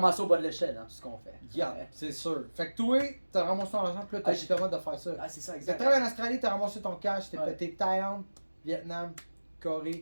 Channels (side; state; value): both; inverted; correlation -1.00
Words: au bas de l'échelle dans tout ce qu'on fait. Yeah, c'est sûr. Fait que toi, t'as ramassé ton argent, puis là, t'as Ah, justement de faire ça. Ah, c'est ça, T'as exact. travaillé en Australie, t'as ramassé ton cash, t'es Ouais. pété Thaïlande, Vietnam,